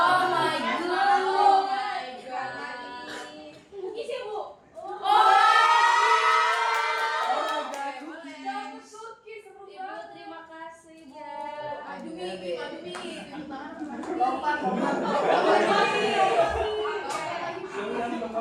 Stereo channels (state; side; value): identical; both; correlation 1.00